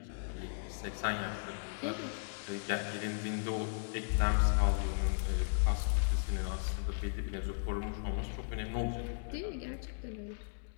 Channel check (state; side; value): silent; right; digital silence